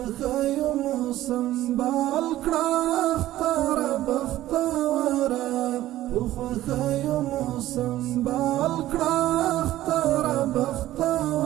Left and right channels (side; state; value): left; quieter; 14.5 dB